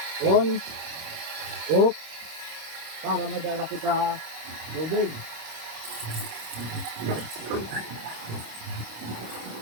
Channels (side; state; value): left; late; 26 ms